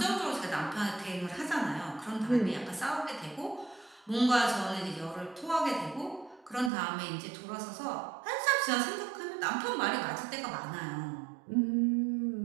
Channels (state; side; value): drops out; left; at 6.7 s